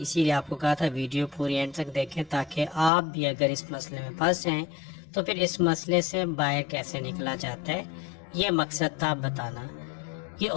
आपको कहा था वीडियो पूरी एंड तक देखें, ताकि आप भी अगर इस मसले में फंस जाएं तो फिर इस मसले से बाहर कैसे निकला जाता है, ये मकसद था बताना। ये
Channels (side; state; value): right; drops out; at 2.9 s